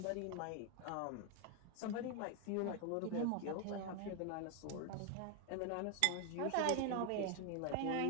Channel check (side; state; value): both; different; correlation 0.01